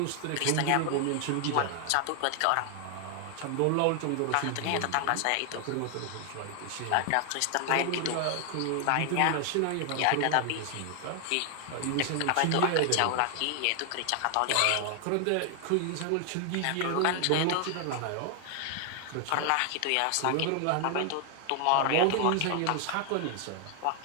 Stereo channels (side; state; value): both; different; correlation 0.00